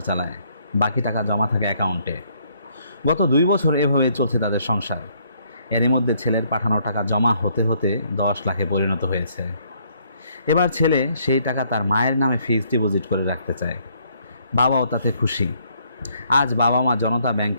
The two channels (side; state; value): both; inverted; correlation -0.68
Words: চালায়, বাকি টাকা জমা থাকে অ্যাকাউন্টে। গত 2 বছর এভাবেই চলছে তাদের সংসার। এরই মধ্যে ছেলের পাঠানো টাকা জমা হতে হতে 10 লাখে পরিণত হয়েছে। এবার ছেলে সেই টাকা তার মায়ের নামে ফিক্সড ডিপোজিট করে রাখতে চায়। বাবাও তাতে খুশি। আজ বাবা মা জনতা